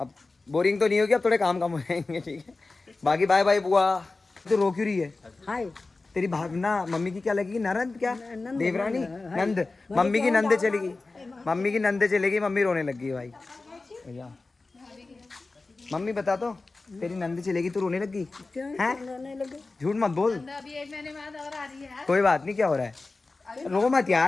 बोरिंग तो नहीं होगी, अब थोड़े काम कम हो जाएंगे, ठीक है। बाकी बाय बाय बुआ। तो रो क्यों रही है? हाय तेरी भावना मम्मी की क्या लगेगी? ननद क्या? देवरानी? नंद? मम्मी की नंदे चलेगी, मम्मी की नंदे चलेगी। मम्मी रोने लगी है भाई। भैया मम्मी बता तो, तेरी नंदी चलेगी तो रोने लगी हैं? झूठ मत बोल। अभी 1 महीने बाद और आ रही है। कोई बात नहीं, क्या हो रहा है? रो मत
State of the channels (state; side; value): quieter; right; 3.5 dB